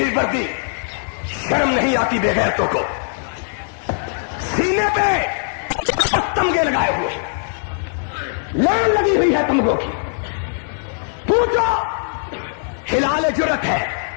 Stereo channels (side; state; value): right; silent; 58 dB below the other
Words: وردی, شرم نہیں آتی بے غیرتوں کو. سینے پہ تمغے لگائے ہوئے, لائن لگی ہوئی ہے تمغوں کی. پوچھو, ہلال جرت ہے,